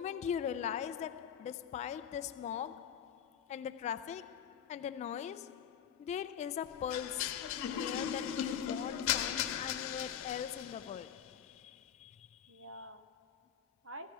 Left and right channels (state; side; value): quieter; right; 8.9 dB